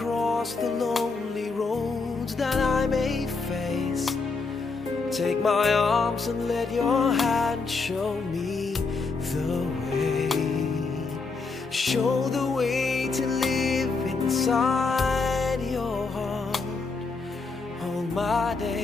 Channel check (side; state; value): right; quieter; 4.2 dB